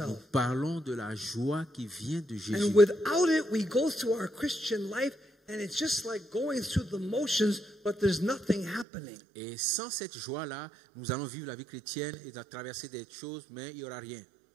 Parlons de la joie qui vient de Jésus. And without it, we go through our Christian life and it's just like going through the motions, but there's nothing happening. Et sans cette joie-là, nous allons vivre la vie chrétienne et traverser des choses, mais il n'y aura rien.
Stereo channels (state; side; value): drops out; left; at 8.8 s